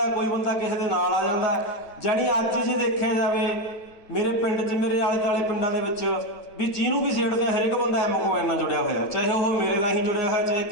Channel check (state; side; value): late; right; 9.1 ms